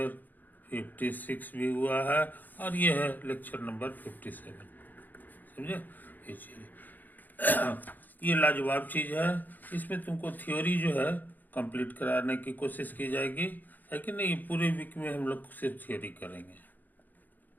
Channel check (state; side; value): late; right; 0.085 ms